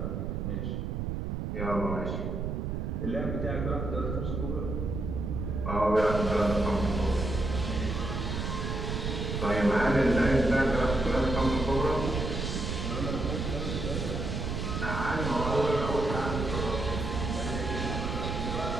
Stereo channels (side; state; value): right; noise; rumble, 2 dB below the sound